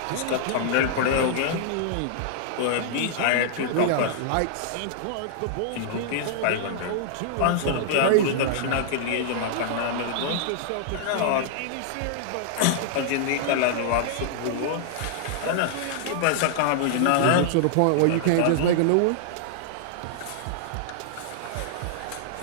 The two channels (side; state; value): both; different; correlation -0.01